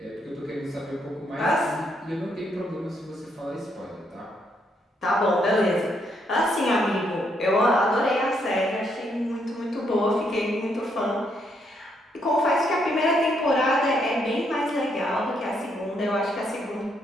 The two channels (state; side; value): normal; both; correlation 0.74